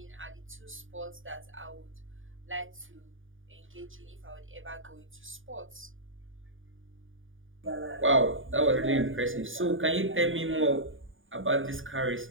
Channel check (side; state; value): left; late; 0.58 ms